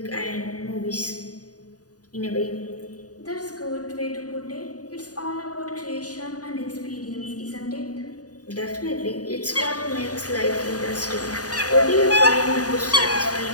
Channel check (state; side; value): late; right; 0.68 ms